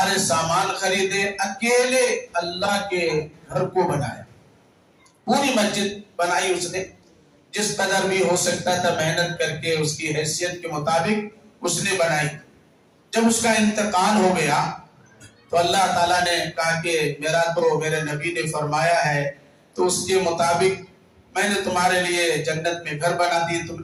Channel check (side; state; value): both; identical; correlation 1.00